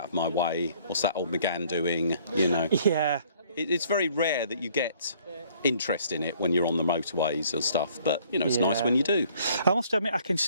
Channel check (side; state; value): both; inverted; correlation -0.60